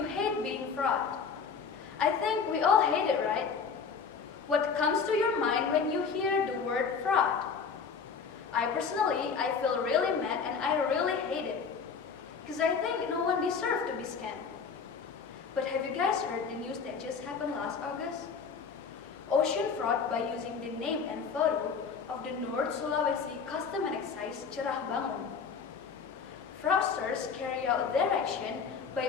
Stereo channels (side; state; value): right; quieter; 5.8 dB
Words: hate being fraud. I think we all hate it, right? What comes to your mind when you hear the word fraud? I feel really mad and I really hate it. Because I think no one deserves to be scammed. But have you guys heard the news that just happened last August? Ocean fraud by using the name and photo of the North Sulawesi Custom and Excise Cerah Bangun. Fraudsters carry out their action